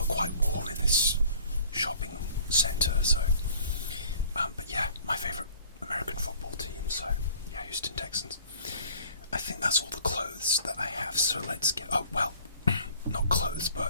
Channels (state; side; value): inverted; both; correlation -0.52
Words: quite warm in this shopping centre. So but yeah, my favourite American football team, so yeah, Houston Texans. I think that's all the clothes that I have, so let's get... Oh, well, not clothes,